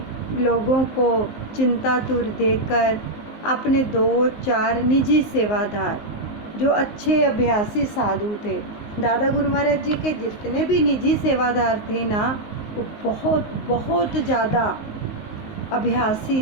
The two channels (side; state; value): right; late; 19 ms